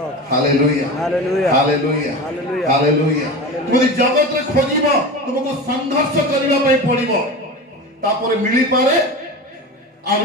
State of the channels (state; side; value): normal; both; correlation 0.28